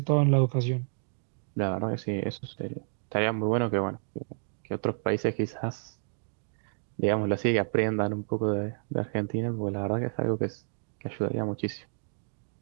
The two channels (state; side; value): silent; left; digital silence